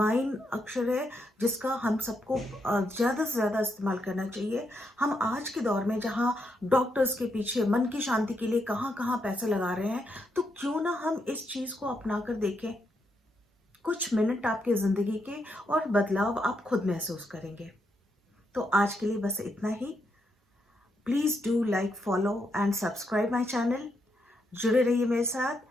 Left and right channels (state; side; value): normal; both; correlation 0.80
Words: अक्षर है, जिसका हम सबको ज़्यादा से ज़्यादा इस्तेमाल करना चाहिए। हम आज के दौर में जहाँ डॉक्टर्स के पीछे मन की शांति के लिए कहाँ कहाँ पैसे लगा रहे हैं, तो क्यों ना हम इस चीज़ को अपना कर देखें। कुछ मिनट आपके ज़िंदगी के और बदलाव आप खुद महसूस करेंगे। तो आज के लिए बस इतना ही। Please do like, follow and subscribe my channel. जुड़े रहिए मेरे साथ।